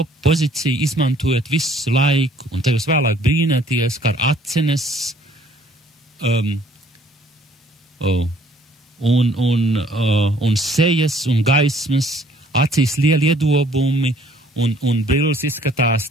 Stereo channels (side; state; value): both; normal; correlation 0.60